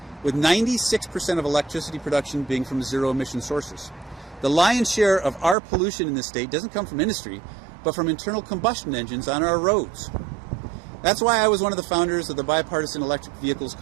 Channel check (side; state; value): left; drops out; at 5.6 s